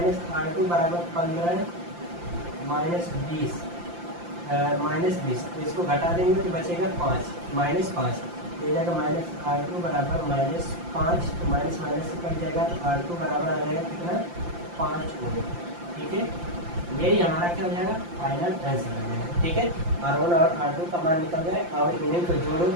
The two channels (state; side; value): late; left; 5.8 ms